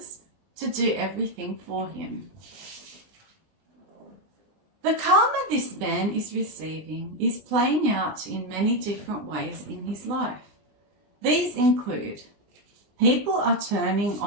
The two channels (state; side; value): late; left; 20 ms